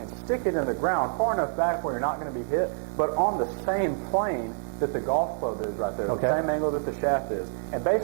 stick it in the ground far enough back where you're not going to be hit, but on the same plane that the golf club is right there, the same angle that the shaft is. And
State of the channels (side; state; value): left; silent; digital silence